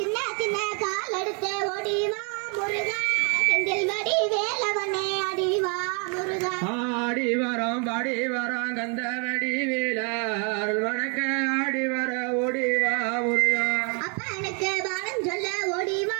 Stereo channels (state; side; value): quieter; left; 37.0 dB